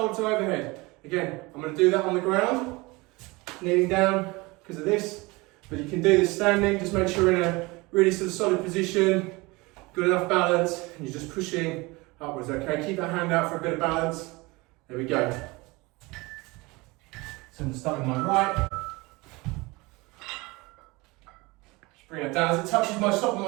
to overhead. Again, I'm going to do that on the ground, kneeling down because of this, but you can do this standing. Just make sure you're in a really sort of solid position, good enough balance, and you're just pushing upwards, okay? Keep that hand out for a bit of balance. There we go. So I'm going to start with my right. Bring it down. As it touches my top of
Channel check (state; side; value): quieter; left; 23.9 dB